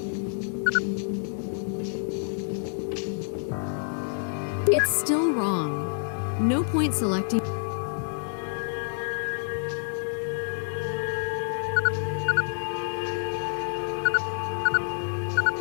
It's still wrong. No point selecting.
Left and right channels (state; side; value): silent; right; digital silence